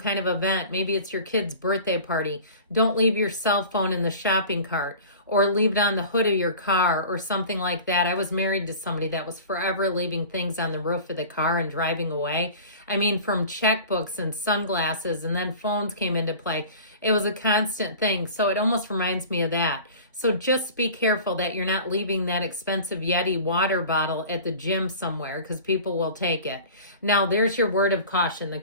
of event, maybe it's your kid's birthday party, don't leave your cell phone in the shopping cart or leave it on the hood of your car or something like that. I was married to somebody that was forever leaving things on the roof of the car and driving away. I mean, from checkbooks and sunglasses, and then phones came into play. It was a constant thing. So it almost reminds me of that. So just be careful that you're not leaving that expensive Yeti water bottle at the gym somewhere, because people will take it. Now, there's your word of caution. The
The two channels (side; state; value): both; inverted; correlation -0.40